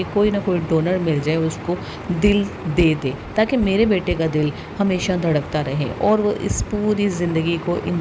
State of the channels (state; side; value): identical; both; correlation 1.00